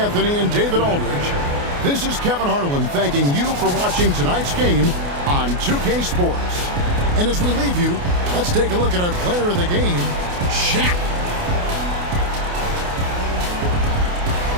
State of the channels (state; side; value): late; left; 28 ms